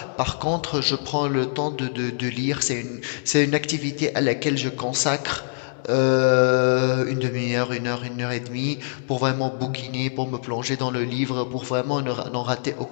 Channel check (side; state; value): right; silent; digital silence